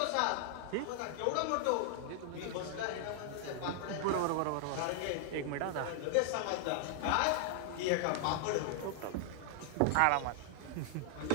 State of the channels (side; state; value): both; different; correlation 0.00